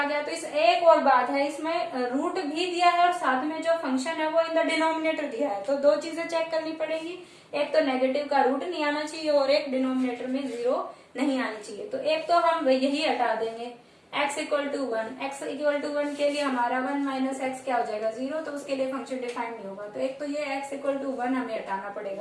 गया। तो इस एक और बात है, इसमें रूट भी दिया है और साथ में जो फंक्शन है वो इन द डिनोमिनेटर दिया है। तो दो चीजें चेक करनी पड़ेगी, एक तो नेगेटिव का रूट नहीं आना चाहिए और एक डिनोमिनेटर में 0 नहीं आनी चाहिए। तो एक तो हम यही हटा देंगे, x equal to 1, x equal to 1 के लिए हमारा 1 माइनस एक्स क्या हो जाएगा 0, तो उसके लिए फंक्शन डिफाइंड नहीं होगा। तो एक तो ये x इक्वल टू 1 हमें हटाना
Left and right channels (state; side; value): identical; both; correlation 1.00